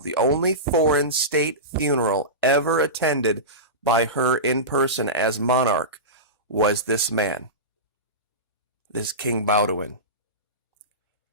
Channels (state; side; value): normal; both; correlation -0.19